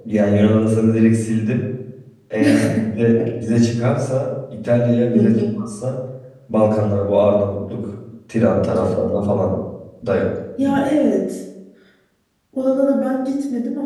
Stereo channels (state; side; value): identical; both; correlation 1.00